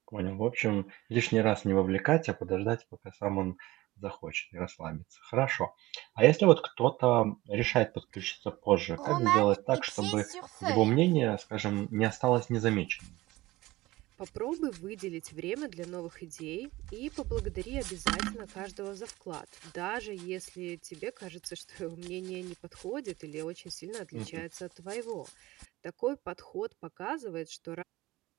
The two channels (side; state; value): left; quieter; 18.9 dB